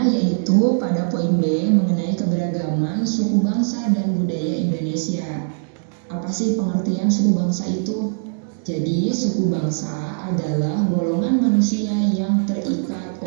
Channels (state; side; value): silent; left; digital silence